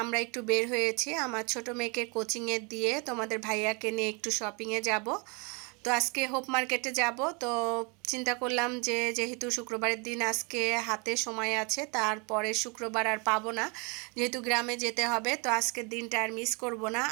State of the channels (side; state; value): left; quieter; 31.6 dB